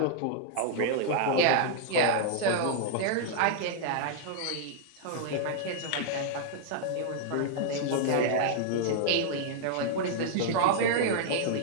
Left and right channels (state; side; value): different; both; correlation -0.01